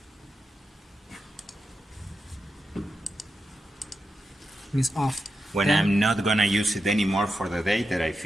Means off. When Then, I'm not gonna use it anymore for the day that I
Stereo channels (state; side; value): normal; both; correlation 0.88